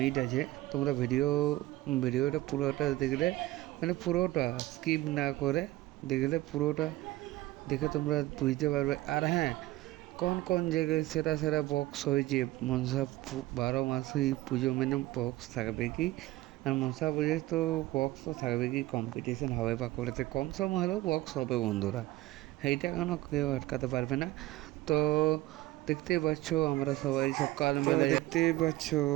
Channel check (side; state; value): left; quieter; 17.6 dB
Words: আছে। তোমরা ভিডিওটা পুরোটা দেখলে, মানে পুরোটা স্কিপ না করে দেখলে, পুরোটা দেখে তোমরা বুঝতে পারবে। আর হ্যাঁ, কোন কোন জায়গায় সেরা সেরা বক্স হয়েছে। মনসা 12 মাসেই পুজো, মানে বক্স থাকবে কি, আর মনসা পুজোয় তো বক্স তো থাকবে কি, কম্পিটিশন হবে বাঁকুড়াতে, কম সম হলেও বক্স হবে বন্ধুরা, এইটা কেন কেউ আটকাতে পারবে না। তো দেখতেই পাচ্ছ আমরা সবাই সকালবেলা দেখতেই পাচ্ছ